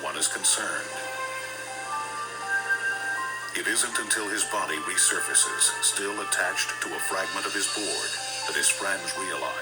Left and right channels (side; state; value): both; identical; correlation 1.00